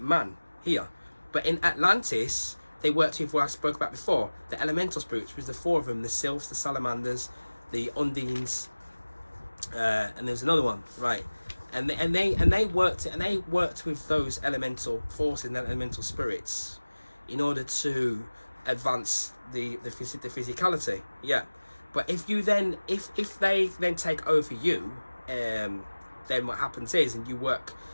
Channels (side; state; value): both; inverted; correlation -1.00